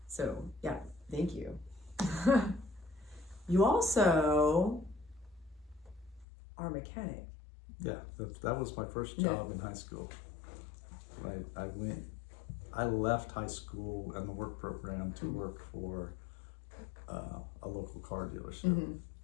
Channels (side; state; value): right; drops out; at 6.2 s